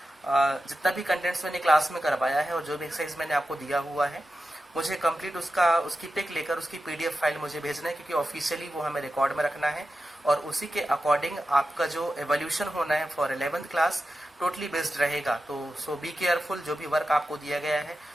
जितना भी कंटेंट्स मैंने क्लास में करवाया है और जो भी एक्सरसाइज मैंने आपको दिया हुआ है मुझे कंप्लीट उसकी पिक लेकर उसकी पीडीएफ फाइल मुझे भेजना है, क्योंकि ऑफिशियली वो हमें रिकॉर्ड में रखना है और उसी के अकॉर्डिंग आपका जो एवोल्यूशन होना है for 11th class totally based रहेगा। तो सो बी केयरफुल, जो भी वर्क आपको दिया गया है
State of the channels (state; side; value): normal; both; correlation 0.92